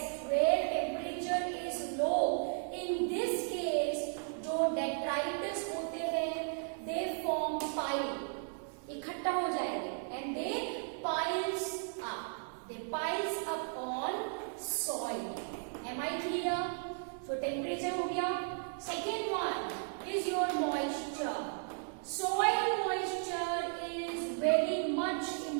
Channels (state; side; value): silent; left; 54 dB below the other